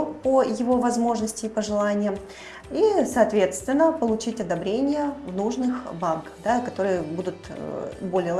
по его возможности и пожеланиям и, соответственно, получить одобрение в нужных банках, да, которые будут более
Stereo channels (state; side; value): identical; both; correlation 1.00